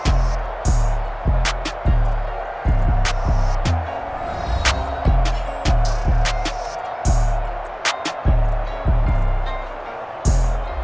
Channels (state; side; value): identical; both; correlation 1.00